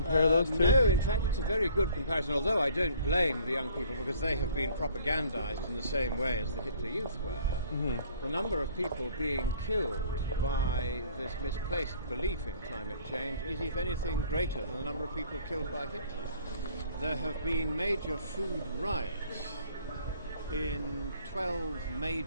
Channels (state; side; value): inverted; both; correlation -0.55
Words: those two? No, in fact it's a very good comparison, although I don't blame the young people because they have been propagandized in the same way as the Hitler Youth were. The number of people being killed by this misplaced belief in climate change is, if anything, greater than the number of people killed by Hitler. There have been major food riots in 12